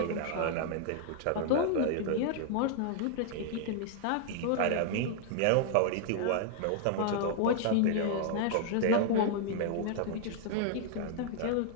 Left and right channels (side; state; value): both; different; correlation -0.01